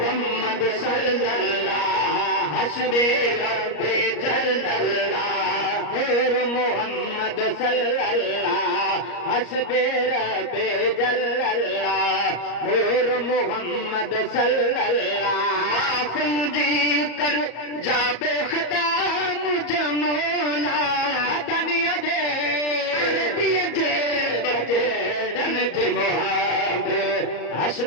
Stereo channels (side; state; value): right; late; 34 ms